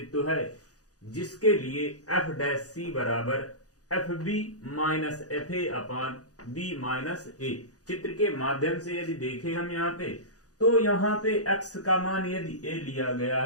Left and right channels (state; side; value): late; right; 0.67 ms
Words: है जिसके लिए f डैश c बराबर fb minus fa upon b minus a। चित्र के माध्यम से यदि देखें हम यहाँ पे, तो यहाँ पे x का मान यदि a लिया गया